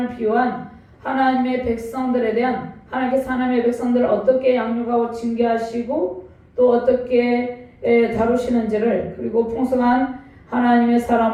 비유한 하나님의 백성들에 대한 하나님께서 하나님의 백성들을 어떻게 양육하고 징계하시고 또 어떻게 다루시는지를 그리고 풍성한 하나님의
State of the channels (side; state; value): both; identical; correlation 1.00